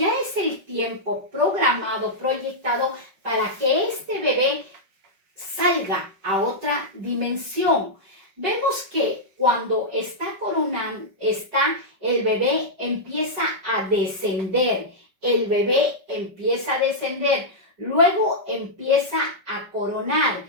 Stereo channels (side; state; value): left; late; 5.4 ms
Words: es el tiempo programado, proyectado para que este bebé salga a otra dimensión. Vemos que cuando está coronando, el bebé empieza a descender. El bebé empieza a descender. Luego empieza a coronar.